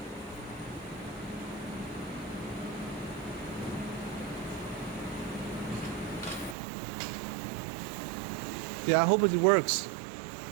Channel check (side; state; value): left; drops out; at 6.6 s